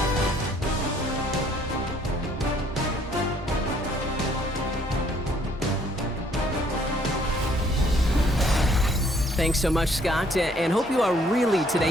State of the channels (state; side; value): normal; both; correlation 0.63